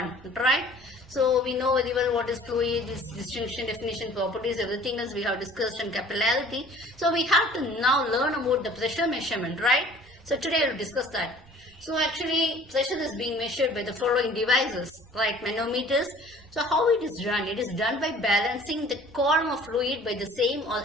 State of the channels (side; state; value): right; noise; rumble, 27 dB below the sound